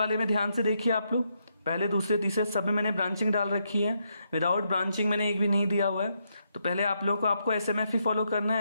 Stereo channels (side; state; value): both; inverted; correlation -0.80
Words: में ध्यान से देखिए आप लोग, पहले दूसरे तीसरे सब में मैंने ब्रांचिंग डाल रखी है, विदाउट ब्रांचिंग मैंने एक भी नहीं दिया हुआ है। तो पहले आप लोगों को आपको एसएमएफ ही फॉलो करना